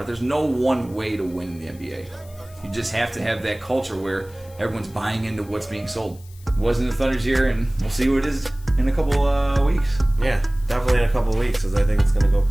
it. There's no one way to win in the NBA. You just have to have that culture where everyone's buying into what's being sold. It wasn't the Thunder's year, and we'll see what it is in a couple weeks. Yeah, definitely in a couple of weeks, because I think it's going to go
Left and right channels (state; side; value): noise; left; hiss, 25 dB below the sound